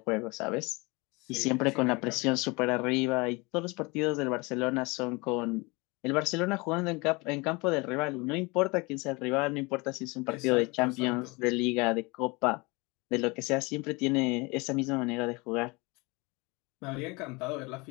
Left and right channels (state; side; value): quieter; right; 26.4 dB